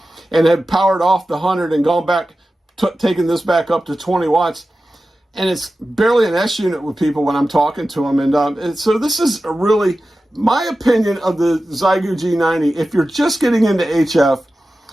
and had powered off the 100 and gone back, taking this back up to 20 watts. And it's barely an S unit with people when I'm talking to them. And so this is really my opinion of the Xiegu G90. If you're just getting into HF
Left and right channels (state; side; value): normal; both; correlation 0.94